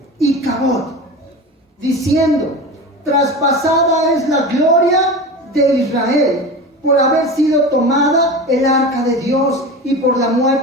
Icabod, diciendo: traspasada es la gloria de Israel por haber sido tomada el arca de Dios y por la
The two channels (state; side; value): normal; both; correlation 0.29